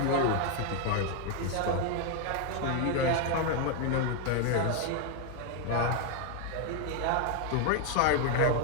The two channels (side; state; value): both; different; correlation 0.00